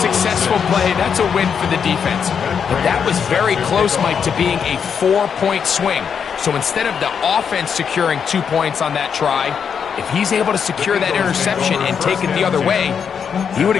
play. That's a win for the defense. But that was very close, Mike, to being a 4-point swing. So instead of the offense securing 2 points on that try, if he's able to secure that interception and take it the other way, he would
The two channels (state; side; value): quieter; right; 7.0 dB